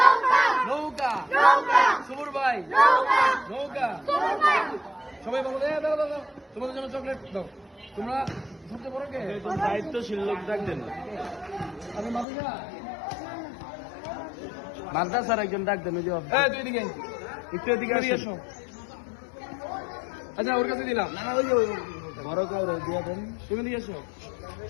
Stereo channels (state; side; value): drops out; right; at 12.2 s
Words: নৌকা, সবুর ভাই, নৌকা। সবাই বলো দাও দাও দাও, তোমাদের জন্য চকলেট দাও। তোমরা সবচেয়ে বড় কে? দায়িত্বশীল লোক ডাকবেন আমি মাদুজা। মাদ্রাসার একজন ডাকবেন। ওই যে তুই এদিকে একটু এদিকে এসো। আচ্ছা ওর কাছে দিলাম। না ওই যে বড় কাউরে দিয়ে দেন। তুমি দিয়ে এসো।